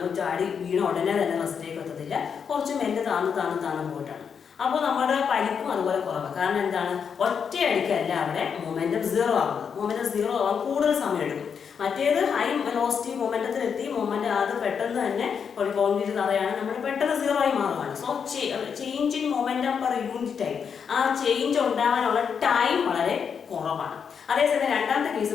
ചാടി വീണ ഉടനെ തന്നെ റെസ്റ്റിലേക്ക് എത്തത്തില്ല, കുറച്ച് മെല്ലെ താന്ന് പോയിട്ടാണ്. അപ്പോൾ നമ്മുടെ പരിക്കും അതുപോലെ കുറവാണ്. കാരണം എന്താണ്? ഒറ്റയടിക്കല്ല അവിടെ മൊമെന്റം 0 ആകുന്നത്. മൊമെന്റം 0 ആവാൻ കൂടുതൽ സമയം എടുക്കും. മറ്റേത് ഹൈ വെലോസിറ്റി മൊമെന്റത്തിലെത്തി മൊമെന്റ് അത് പെട്ടെന്ന് തന്നെ ഒരു കോൺക്രീറ്റ് തറയാണ്, നമ്മൾ പെട്ടെന്ന് 0 ആയി മാറുകയാണ്. So change in momentum per unit time, ആ ചേഞ്ച് ഉണ്ടാകാനുള്ള ടൈം വളരെ കുറവാണ്. അതേസമയം രണ്ടാമത്തെ കേസ്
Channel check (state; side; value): quieter; right; 6.8 dB